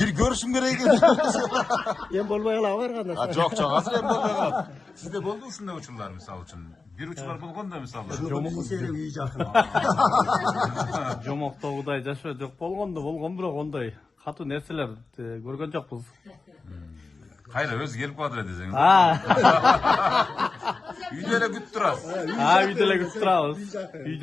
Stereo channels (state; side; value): quieter; right; 4.0 dB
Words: görüşüm gerek eкен. Ben bolmay var kanda. Жок, азыр эми болбой калат. Сизде болду ушундай учурлар, мисалы үчүн? Бир учурлар болгон да, мисалы. Жомок серек үй жакын. Жомоктогудай жашоо жок болгон бирок ондай катуу нерселер көргөн жокпуз. Кайра өзү келип калат десең. Үйдө эле күтүп турасыз. Үйдө эле күтүп турабыз. Үй